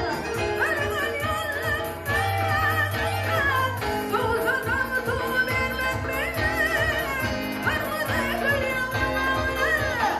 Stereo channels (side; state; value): both; identical; correlation 1.00